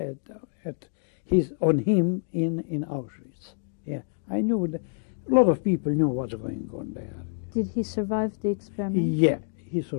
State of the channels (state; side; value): silent; right; digital silence